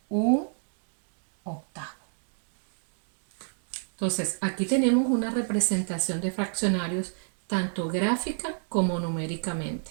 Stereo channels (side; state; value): left; silent; digital silence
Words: un octavo. Entonces, aquí tenemos una representación de fraccionarios tanto gráfica como numéricamente.